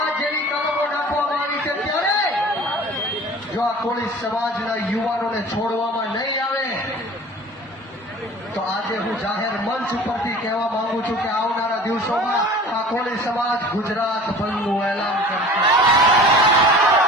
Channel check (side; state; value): both; normal; correlation 0.43